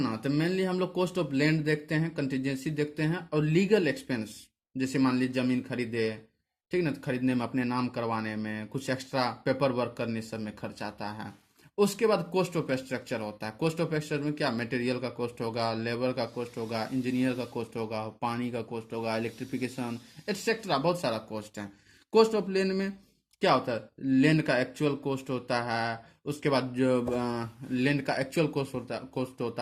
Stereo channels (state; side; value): identical; both; correlation 1.00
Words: तो मेनली हम लोग कॉस्ट ऑफ लैंड देखते हैं, कंटीजेंसी देखते हैं, और लीगल एक्सपेंस। जैसे मान लीजिए जमीन खरीदे, ठीक ना, तो खरीदने में अपने नाम करवाने में कुछ एक्स्ट्रा पेपर वर्क करने सब में खर्च आता है। उसके बाद कॉस्ट ऑफ स्ट्रक्चर होता है। कॉस्ट ऑफ स्ट्रक्चर में क्या, मटेरियल का कॉस्ट होगा, लेबर का कॉस्ट होगा, इंजीनियर का कॉस्ट होगा, पानी का कॉस्ट होगा, इलेक्ट्रिफिकेशन एटसेट्रा, बहुत सारा कॉस्ट है। कॉस्ट ऑफ लैंड में क्या होता है, लैंड का एक्चुअल कॉस्ट होता है, उसके बाद जो लैंड का एक्चुअल कॉस्ट